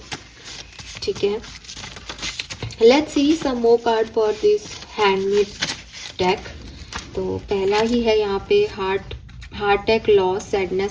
ठीक है। Let's see some more card for this handmade deck. तो पहला ही है यहाँ पे heart attack, loss,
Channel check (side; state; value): both; identical; correlation 1.00